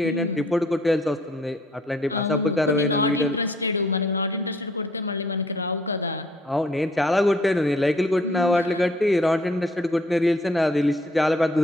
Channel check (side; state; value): both; normal; correlation 0.61